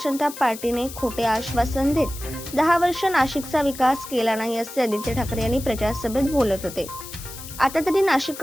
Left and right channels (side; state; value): left; noise; hiss, 13 dB below the sound